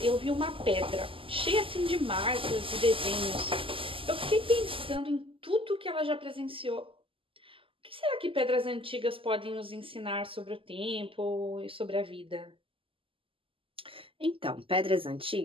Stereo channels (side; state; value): left; late; 0.26 ms